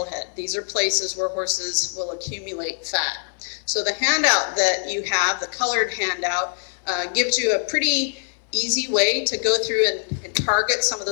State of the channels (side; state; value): right; silent; 63 dB below the other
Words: head. These are places where horses will accumulate fat. So the handout that you have, the colored handout, gives you a pretty easy way to go through and target some of